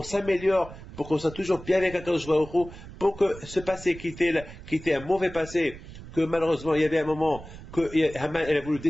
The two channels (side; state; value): right; noise; rumble, 15 dB below the sound